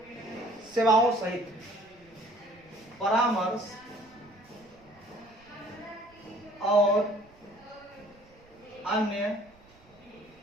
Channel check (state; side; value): noise; right; rumble, 27 dB below the sound